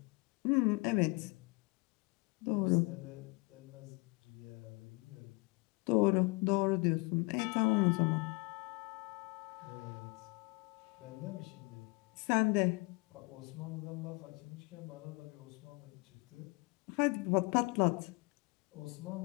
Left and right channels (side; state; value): right; quieter; 28.4 dB